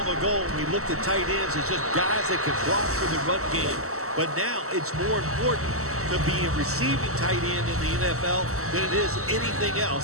ago when we looked at tight ends as just guys that could block for the run game. But now it's more important to be a receiving tight end in the NFL than it is anything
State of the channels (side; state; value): left; late; 0.64 ms